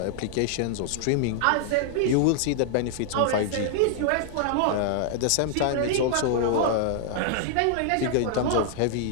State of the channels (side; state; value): both; different; correlation -0.01